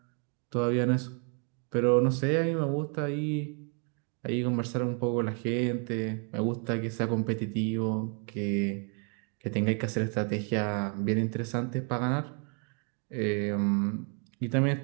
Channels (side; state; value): left; quieter; 39.6 dB